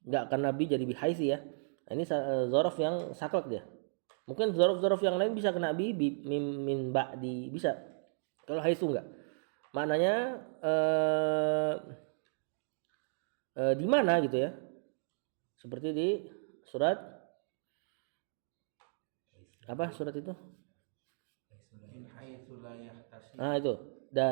Enggak karena bi jadi bihaitsi ya. Nah, ini dzaraf yang saklek dia. Mungkin dzaraf-dzaraf yang lain bisa kena bi min ba'di, bisa. Kalau haitsu enggak. maknanya di mana gitu ya. Seperti di surat apa surat itu? Min haitsu la yahtasib. Nah itu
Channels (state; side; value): silent; left; digital silence